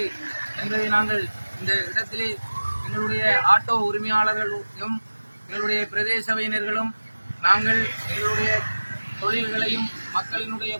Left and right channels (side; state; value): both; inverted; correlation -1.00